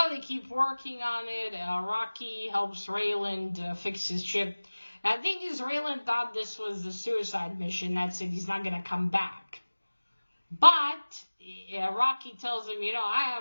they keep working on it. Rocky helps Raylan fix his ship. Now, the thing is, Raylan thought this was a suicide mission. That's it. He's not going to come back. But Rocky tells him, I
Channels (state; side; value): inverted; both; correlation -1.00